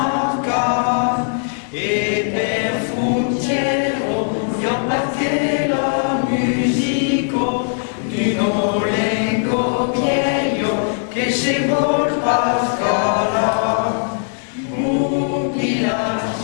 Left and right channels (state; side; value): silent; right; digital silence